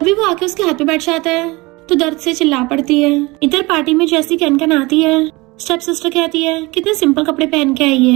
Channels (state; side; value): quieter; left; 23.3 dB